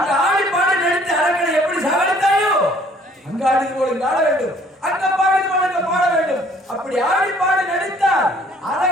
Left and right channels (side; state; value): both; normal; correlation 0.58